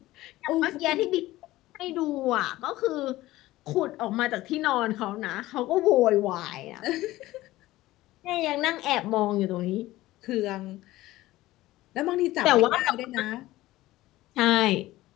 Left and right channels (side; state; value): right; quieter; 17.0 dB